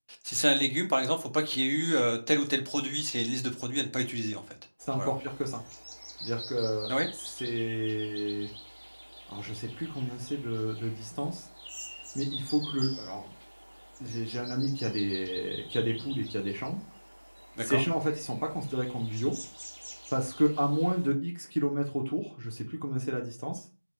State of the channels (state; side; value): inverted; both; correlation -1.00